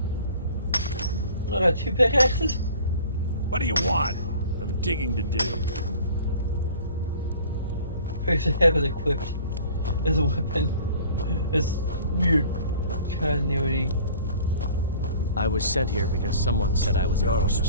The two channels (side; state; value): both; inverted; correlation -0.48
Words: I got 2 pickaxes? What do you want? I have digging to do. I should have it equipped as a weapon. It's weird continuity. I was sent here because someone said I was a Jarl Forsworn.